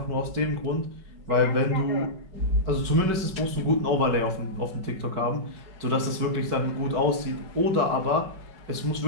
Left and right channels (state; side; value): late; left; 5.3 ms